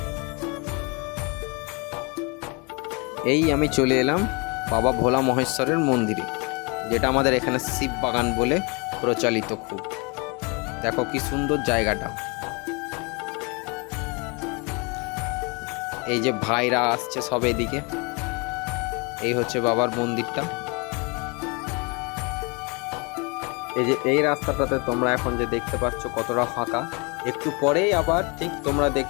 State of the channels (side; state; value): right; quieter; 30.5 dB